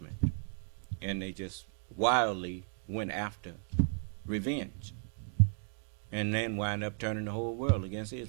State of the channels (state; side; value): silent; left; 55 dB below the other